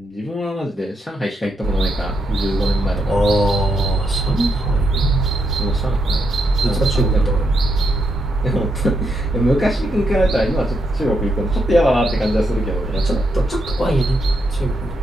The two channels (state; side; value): normal; both; correlation 0.80